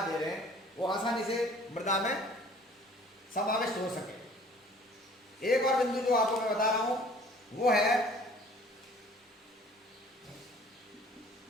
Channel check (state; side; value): normal; both; correlation 0.52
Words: दे रहे हैं वो आसानी से मृदा में समाविष्ट हो सके। एक और बिंदु जो आपको मैं बता रहा हूं वो है